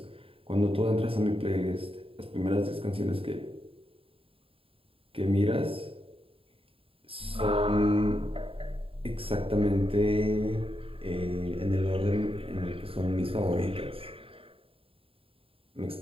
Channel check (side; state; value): left; late; 0.27 ms